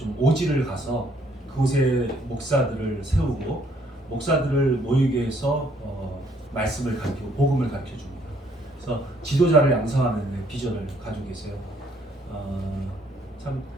오지를 가서 그곳에 목사들을 세우고 목사들을 모이게 해서 말씀을 가르치고 복음을 가르쳐 줍니다. 그래서 지도자를 양성하는 비전을 가지고 계세요. 참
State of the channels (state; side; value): normal; both; correlation 0.66